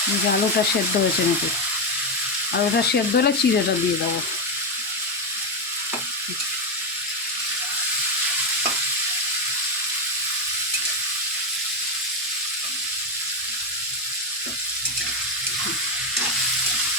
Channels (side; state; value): both; normal; correlation 0.08